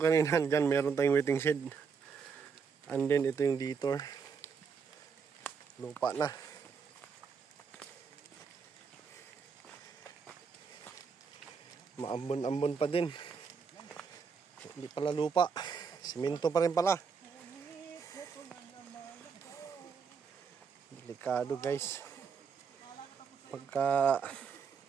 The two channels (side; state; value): left; quieter; 5.9 dB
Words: kanina, dyan meron tayong waiting shed. And then ito yung detour. Lupa na. Maambon-ambon pa din. Hindi pala lupa. Semento pa rin pala. Delikado guys. Pagka